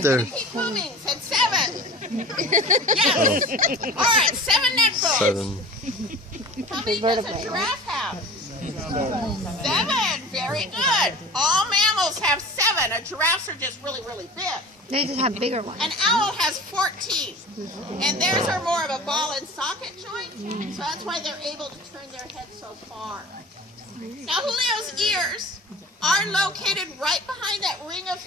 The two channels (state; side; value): normal; both; correlation 0.39